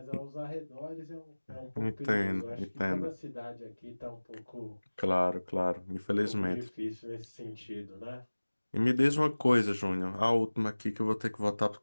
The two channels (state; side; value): inverted; both; correlation -1.00